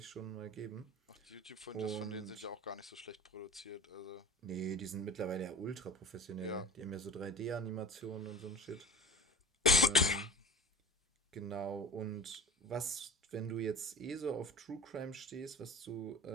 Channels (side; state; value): both; normal; correlation 0.38